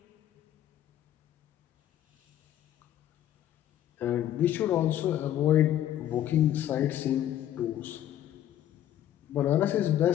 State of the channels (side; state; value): right; quieter; 11.8 dB